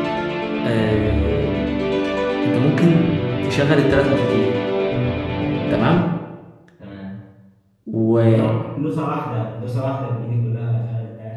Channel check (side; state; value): both; identical; correlation 1.00